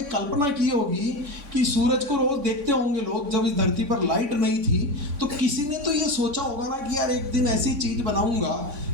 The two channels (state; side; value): late; left; 3.6 ms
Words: कल्पना की होगी कि सूरज को रोज देखते होंगे लोग, जब इस धरती पर लाइट नहीं थी, तो किसी ने तो ये सोचा होगा ना कि यार एक दिन ऐसी चीज बनाऊंगा